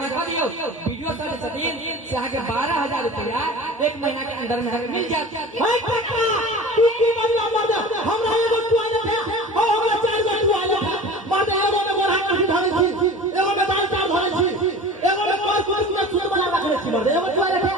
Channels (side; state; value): both; normal; correlation 0.38